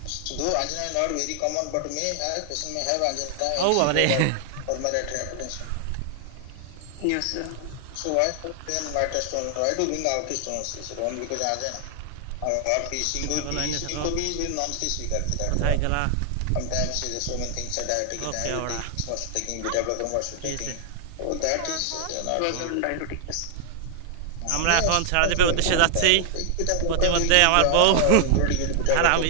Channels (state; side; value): different; both; correlation 0.00